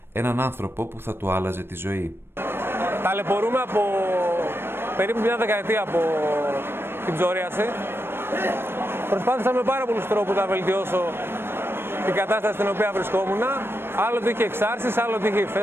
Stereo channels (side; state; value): left; late; 0.11 ms